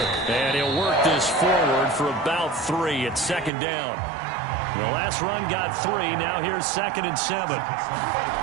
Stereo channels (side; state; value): left; drops out; at 3.5 s